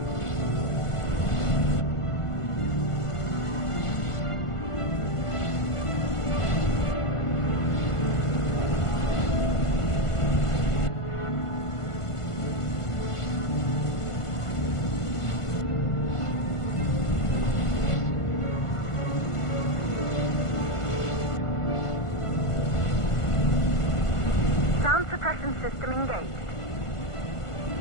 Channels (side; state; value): right; late; 1.5 ms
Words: Sound suppression system engaged.